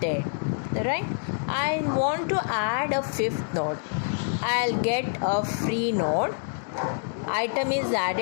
Right? I want to add a 5th node. I'll get a free node. Item is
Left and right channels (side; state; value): right; silent; digital silence